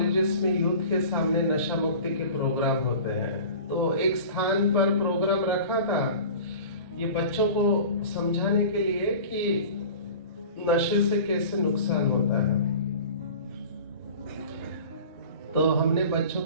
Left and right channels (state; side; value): inverted; both; correlation -0.39